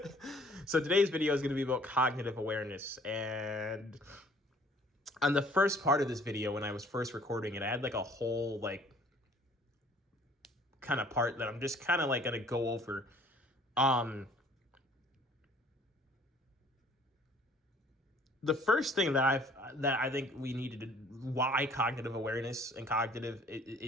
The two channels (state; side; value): normal; both; correlation 0.56